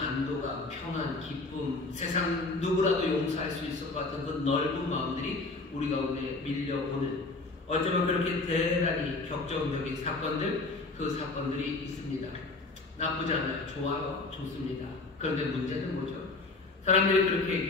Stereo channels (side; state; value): right; quieter; 3.5 dB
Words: 평안, 기쁨, 세상 누구라도 용서할 수 있을 것 같은 그 넓은 마음들이 우리 가운데 밀려오는 어쩌면 그렇게 대단히 격정적인 사건들, 그 사건들이 있습니다. 나쁘지 않아요. 좋아요. 좋습니다. 그런데 문제는 뭐죠? 사람들이 그렇게